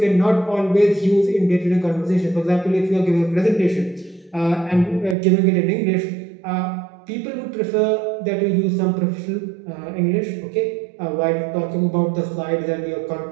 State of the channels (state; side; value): drops out; left; at 5.2 s